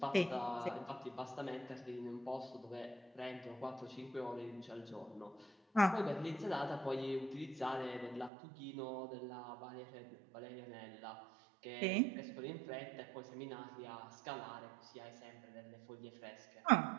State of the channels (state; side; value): drops out; left; at 8.3 s